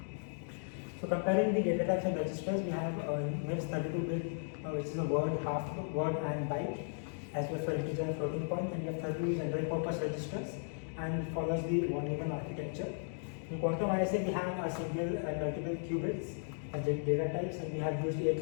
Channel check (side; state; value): right; silent; digital silence